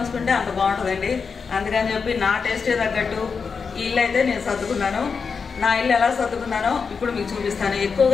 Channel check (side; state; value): right; quieter; 5.4 dB